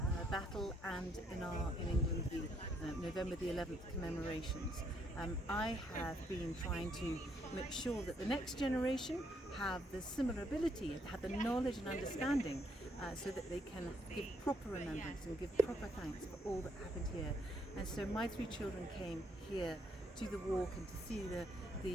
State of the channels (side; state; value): both; normal; correlation 0.72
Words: battle, and in England the November the 11th commemorations. I have been trying to make sure that the next generation have the similar ability, have the knowledge and understanding, so that they can give proper remembrance and give proper thanks for all that happened here. And so my three children came here to the walk and to see the